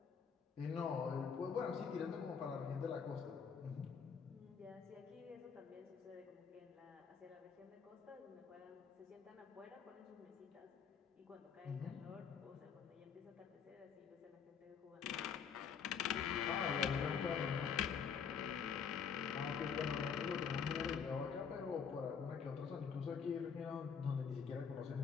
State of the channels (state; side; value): quieter; right; 6.7 dB